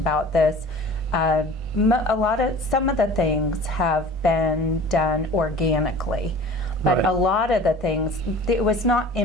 this. Some of the things have been done organically, but a lot of the things, it was not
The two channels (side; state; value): both; normal; correlation 0.43